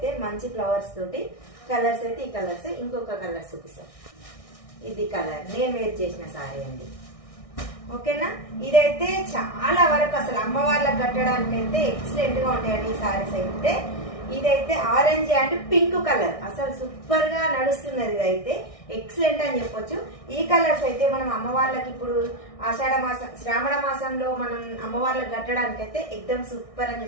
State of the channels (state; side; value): late; right; 1.6 ms